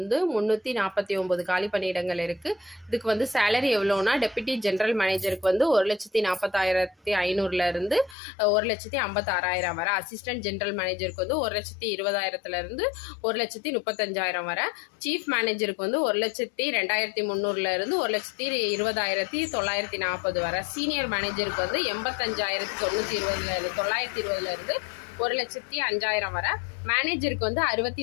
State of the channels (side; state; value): right; drops out; at 8.2 s